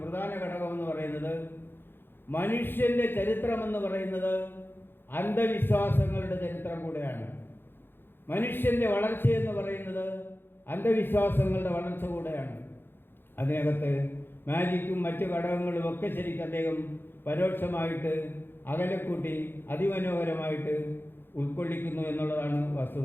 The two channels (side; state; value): right; late; 0.10 ms